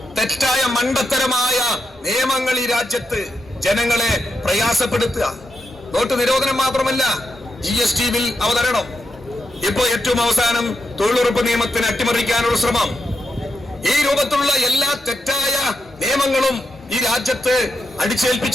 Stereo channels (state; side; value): normal; both; correlation 0.85